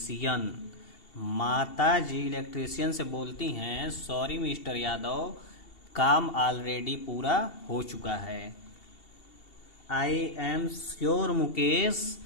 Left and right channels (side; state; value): right; late; 2.7 ms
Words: माता जी इलेक्ट्रीशियन से बोलती हैं सॉरी मिस्टर यादव, काम ऑलरेडी पूरा हो चुका है। I am sure Mukesh